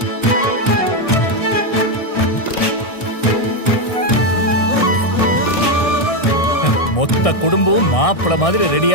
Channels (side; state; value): right; late; 1.6 ms